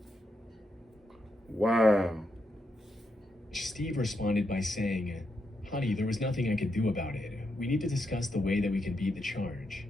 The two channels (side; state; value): both; normal; correlation 0.82